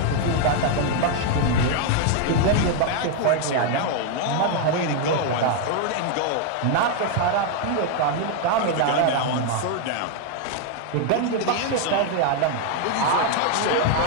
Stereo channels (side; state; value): both; different; correlation 0.00